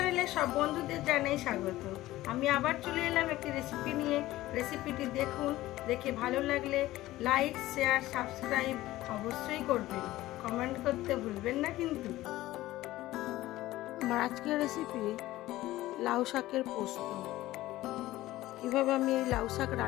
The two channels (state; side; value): quieter; right; 16.5 dB